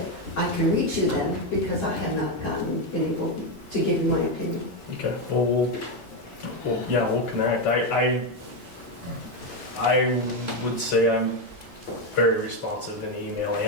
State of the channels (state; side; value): normal; both; correlation 0.08